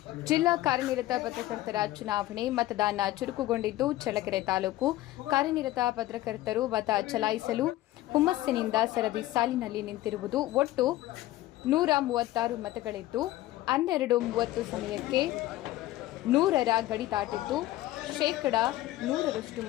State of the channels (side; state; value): right; quieter; 16.0 dB